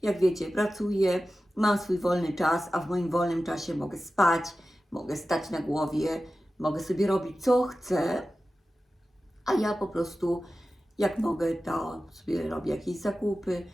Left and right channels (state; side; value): normal; both; correlation 0.94